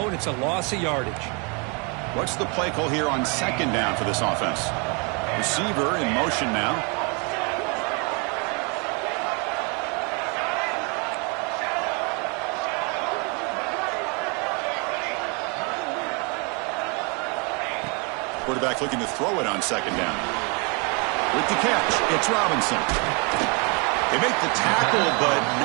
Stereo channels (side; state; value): left; quieter; 33.0 dB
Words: and it's a loss of yardage. What's the play call here on second down for this offense? Receiver in motion now. Quarterback looking to throw it on second down. With the catch, it's Robinson. They make the tackle, but